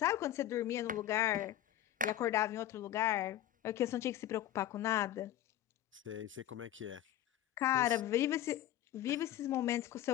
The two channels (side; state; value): right; quieter; 12.6 dB